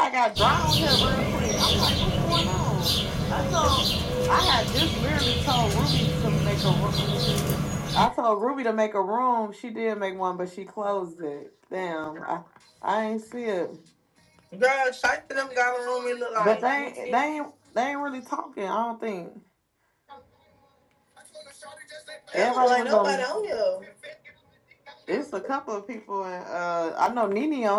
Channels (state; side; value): identical; both; correlation 1.00